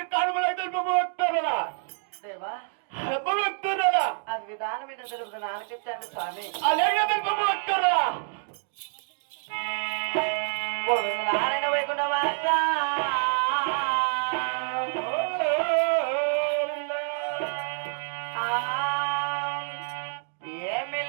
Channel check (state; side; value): silent; left; digital silence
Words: కానుమలాగా భక్తురాలా దేవా భక్తురాలా అది విధానమైన తెలుపు నాన్నకిచ్చాను స్వామి అలాగే భక్తురాలా గోవింద నారాయణ వైకుంఠ వాస